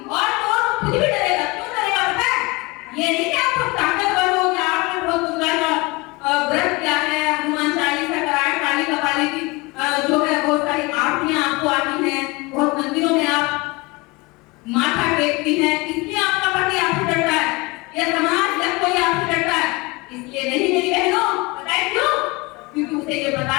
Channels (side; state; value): right; quieter; 24.7 dB